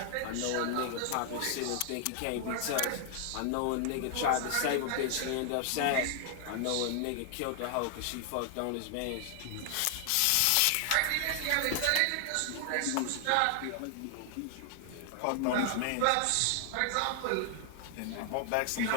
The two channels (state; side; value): different; both; correlation 0.00